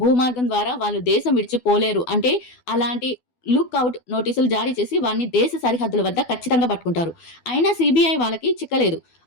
భూమార్గం ద్వారా వాళ్ళు దేశం విడిచిపోలేరు అంటే అలాంటి లుక్అవుట్ నోటీసులు జారీ చేసి వారిని దేశ సరిహద్దుల వద్ద ఖచ్చితంగా పట్టుకుంటారు. అయినా సిబిఐ వాళ్ళకి చిక్కలేదు.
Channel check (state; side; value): late; right; 12 ms